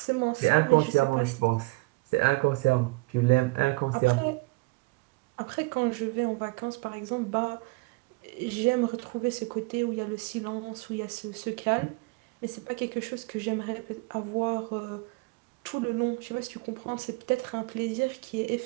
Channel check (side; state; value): left; quieter; 24.9 dB